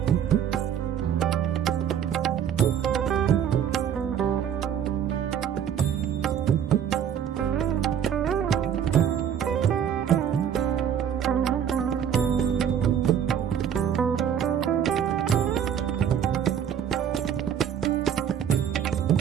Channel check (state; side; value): quieter; left; 8.7 dB